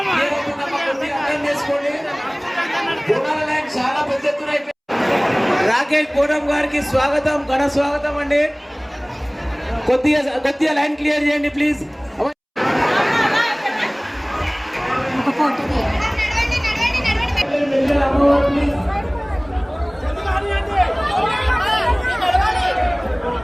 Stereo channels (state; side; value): identical; both; correlation 1.00